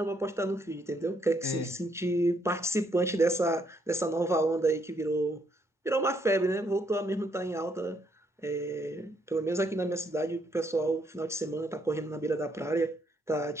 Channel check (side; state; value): both; normal; correlation 0.72